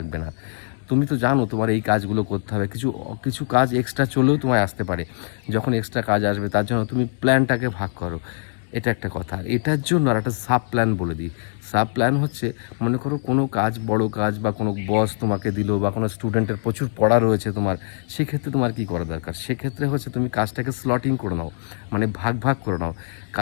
না। তুমি তো জানো তোমার এই কাজগুলো করতে হবে, কিছু কিছু কাজ এক্সট্রা চলেও তোমায় আসতে পারে। যখন এক্সট্রা কাজ আসবে তার জন্য তুমি প্ল্যানটাকে ভাগ করো, এটা একটা কথা। আর এটার জন্য আর একটা সাব প্ল্যান বলে দিই। সাব প্ল্যান হচ্ছে, মনে করো কোনো কাজ, বড় কাজ, বা কোনো বস তোমাকে দিল, বা কোনো স্টুডেন্টের প্রচুর পড়া রয়েছে তোমার, সেক্ষেত্রে তোমার কী করা দরকার? সেক্ষেত্রে হচ্ছে তুমি কাজটাকে স্লটিং করে নাও, মানে ভাগ ভাগ করে নাও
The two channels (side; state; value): right; silent; digital silence